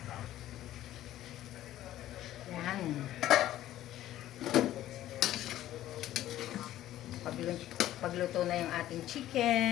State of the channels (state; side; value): quieter; right; 13.5 dB